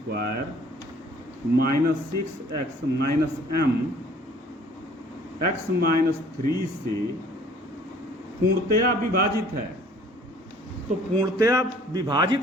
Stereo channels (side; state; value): both; normal; correlation 0.54